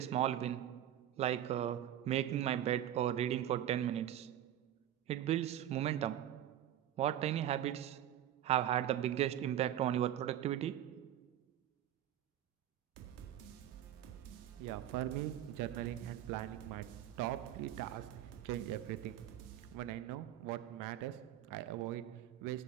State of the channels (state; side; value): quieter; left; 11.5 dB